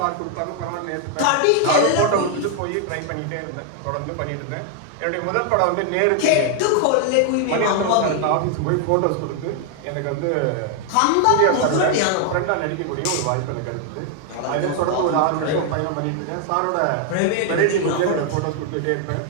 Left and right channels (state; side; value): different; both; correlation 0.00